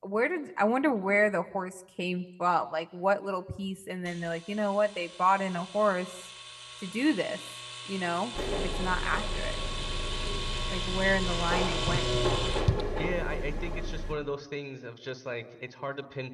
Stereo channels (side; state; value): both; identical; correlation 1.00